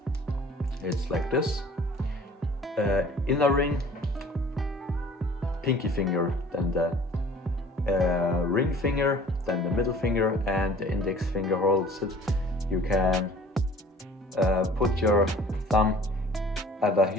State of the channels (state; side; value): normal; both; correlation 0.50